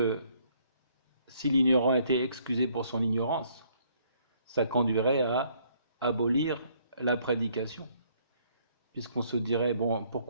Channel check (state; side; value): inverted; both; correlation -0.66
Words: si l'ignorant était excusé pour son ignorance, ça conduirait à abolir la prédication, puisqu'on se dirait, bon,